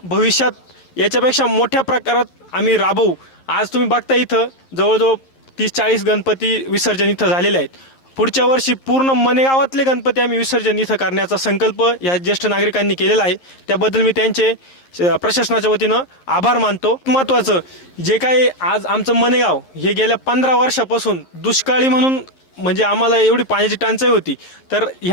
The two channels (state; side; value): late; right; 11 ms